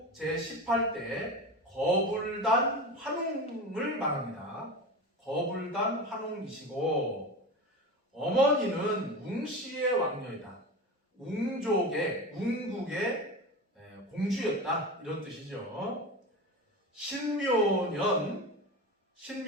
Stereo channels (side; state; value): both; normal; correlation 0.27